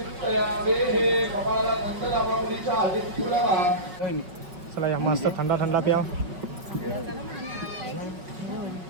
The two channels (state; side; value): late; left; 5.6 ms